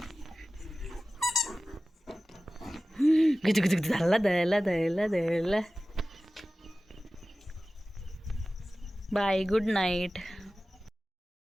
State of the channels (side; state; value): both; normal; correlation 0.96